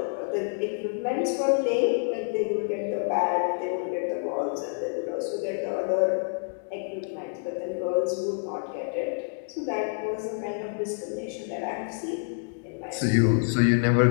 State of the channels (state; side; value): silent; right; 60 dB below the other